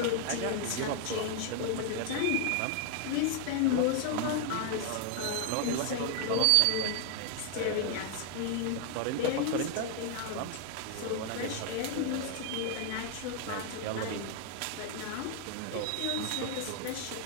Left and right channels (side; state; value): both; different; correlation 0.00